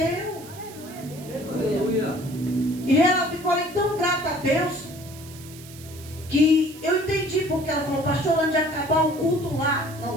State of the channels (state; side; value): noise; right; hiss, 18 dB below the sound